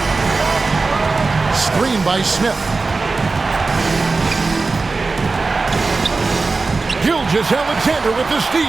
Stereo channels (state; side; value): quieter; left; 3.9 dB